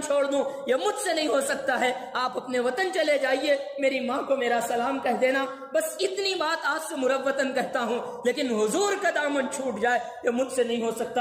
چھوڑ دوں یہ مجھ سے نہیں ہو سکتا ہے، آپ اپنے وطن چلے جائیے، میری ماں کو میرا سلام کہہ دینا، بس اتنی بات آج سے مروتاً کہتا ہوں، لیکن حضور کا دامن چھوٹ جائے یہ مجھ سے نہیں ہو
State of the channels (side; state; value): both; identical; correlation 1.00